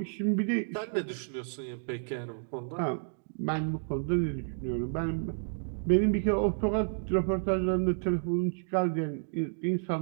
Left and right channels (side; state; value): left; silent; digital silence